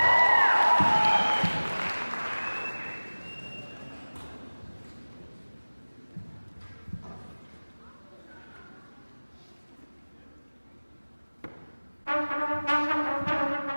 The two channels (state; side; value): inverted; both; correlation -1.00